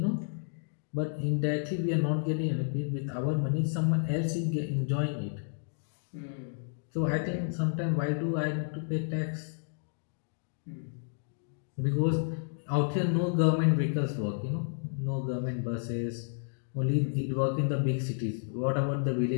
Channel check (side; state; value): right; silent; digital silence